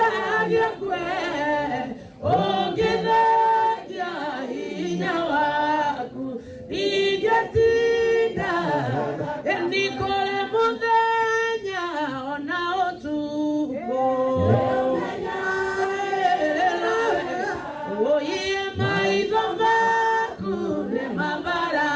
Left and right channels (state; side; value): identical; both; correlation 1.00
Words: kwe ũngĩthengia hinya waku ingĩtinda ni kũrĩ mũthenya ona ũtukũ ũiye maitho maku nĩ